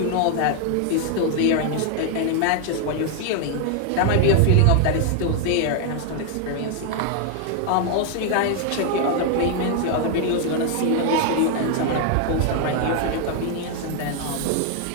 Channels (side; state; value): both; different; correlation 0.00